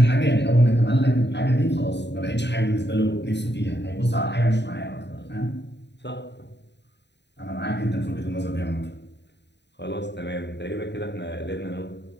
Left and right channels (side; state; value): right; late; 0.50 ms